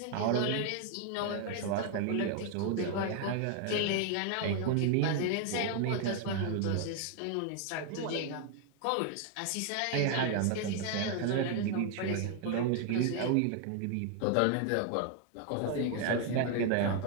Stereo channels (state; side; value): different; both; correlation 0.00